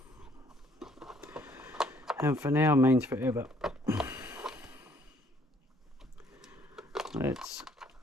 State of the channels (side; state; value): both; normal; correlation 0.63